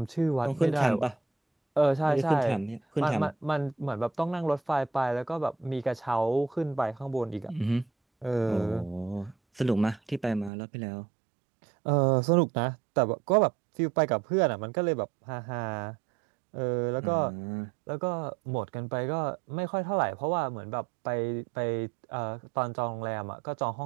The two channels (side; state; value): left; drops out; at 10.5 s